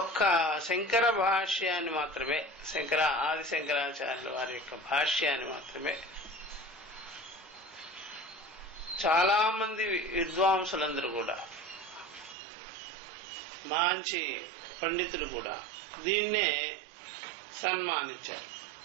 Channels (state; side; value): drops out; left; at 12.4 s